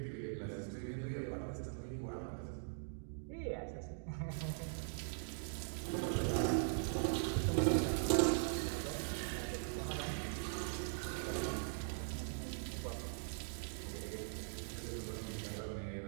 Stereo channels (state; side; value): silent; left; digital silence